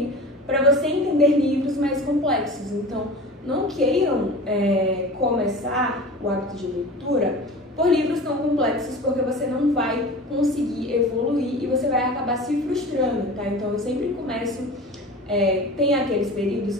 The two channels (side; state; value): both; normal; correlation 0.36